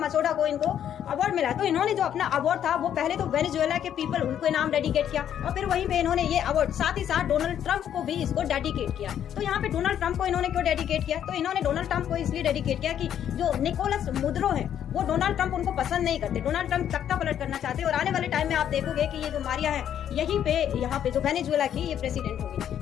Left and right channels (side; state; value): right; quieter; 9.9 dB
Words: को इनको अवार्ड मिला तो इन्होंने जो अपना अवार्ड था वो पहले तो वेनेजुएला के पीपल उनको नाम डेडिकेट किया और फिर वहीं पे इन्होंने ये अवार्ड साथ ही साथ डोनाल्ड ट्रंप को भी इसको डेडिकेट किया। तो यहाँ पे डोनाल्ड ट्रंप को इन्होंने क्यों डेडिकेट किया, तो इन्होंने डोनाल्ड ट्रंप को इसलिए डेडिकेट किया कि जो निकोलस मुद्रो है वो डोनाल्ड ट्रंप उनको पसंद नहीं करते। डोनाल्ड ट्रंप तख्ता पलट करना चाहते हैं और आने वाले टाइम में आप देखोगे कि ये जो मारिया है यहीं पे यहाँ पे जो वेनेजुएला की ये प्रेसिडेंट होगी।